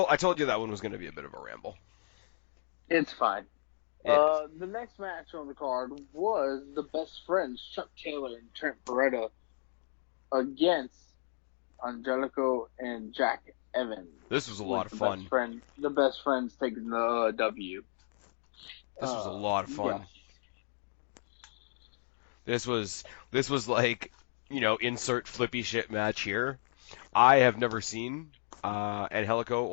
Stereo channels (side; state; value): right; silent; digital silence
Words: I told you that one was going to be a bit of a ramble. It's fine. It is. The next match on the card was the best friends Chuck Taylor and Trent Beretta against Angelico and Jack Evans. This was a lot With of fun. the best friends taking the W. This was a lot of Yes. fun. This was like, insert flippy shit match here. I have never seen Angelico